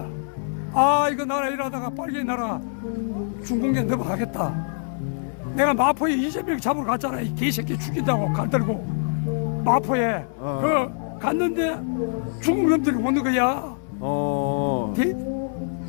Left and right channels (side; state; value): right; silent; 62 dB below the other